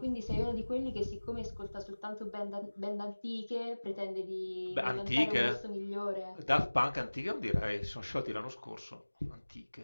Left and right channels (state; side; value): inverted; both; correlation -1.00